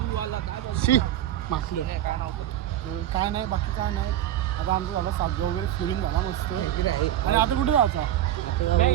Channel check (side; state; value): left; quieter; 12.1 dB